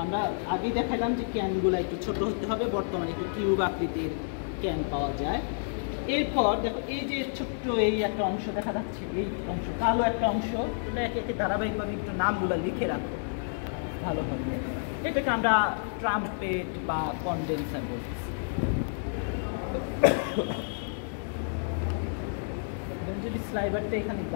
আমরা আগেই দেখালাম যে ক্যানগুলো একটু ছোট হতে হবে, বর্তমানে একটু কিউব আকৃতির ক্যান পাওয়া যায়। এরপর দেখো এই যে ছোট্ট এই একটা অংশ দেখা যাচ্ছে, এই অংশ কালো একটা অংশ, এটা একে একে ধারাবাহিকভাবে একটু নামগুলো লিখে রাখো ভালোভাবে। এটাকে আমরা ট্রাম্পেট বা কনডেন্সার বলতেছি। যদি স্লাইভারটা এখানে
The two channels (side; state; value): right; silent; digital silence